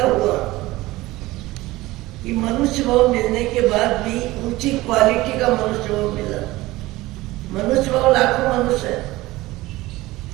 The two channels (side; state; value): left; quieter; 18.8 dB